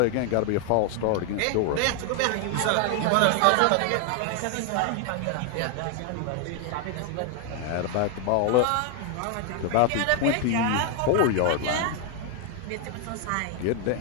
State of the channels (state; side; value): different; both; correlation 0.00